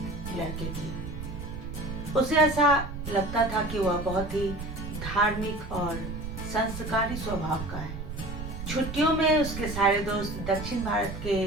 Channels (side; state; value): right; noise; rumble, 8 dB below the sound